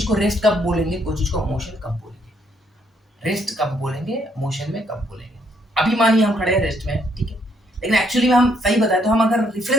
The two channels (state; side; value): normal; both; correlation 0.71